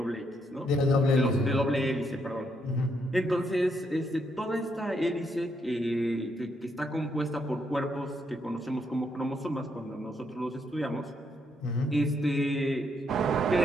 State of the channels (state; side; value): normal; both; correlation 0.76